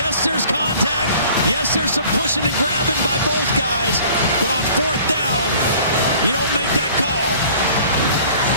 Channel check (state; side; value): inverted; both; correlation -0.50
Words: there's contact. Yes, there's some pushing and grabbing by both guys, but on 4th down, you don't make that call.